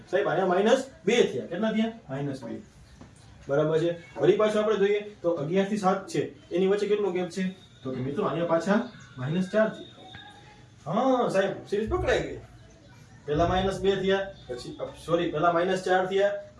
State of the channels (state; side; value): identical; both; correlation 1.00